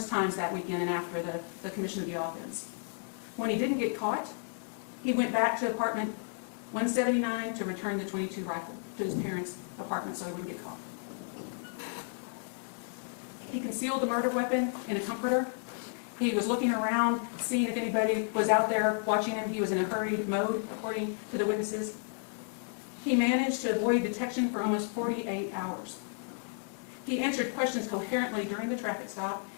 times that weekend and after the commission of the offense. When he didn't get caught, he went back to apartment 179 to return the .22 rifle to his parents' apartment so he wouldn't get caught. He concealed the murder weapon in a comforter. He was looking around, seeing if anybody was out there watching him. He was in a hurried mode, according to the witnesses. He managed to avoid detection for almost 48 hours. He answered questions coherently during the traffic stop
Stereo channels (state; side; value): silent; right; 56 dB below the other